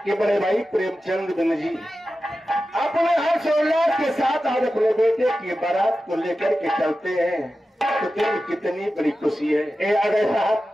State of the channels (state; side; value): normal; both; correlation 0.93